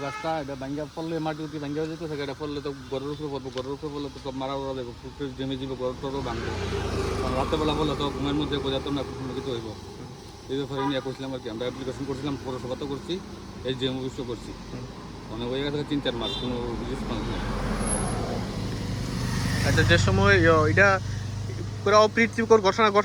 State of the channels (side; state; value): both; identical; correlation 1.00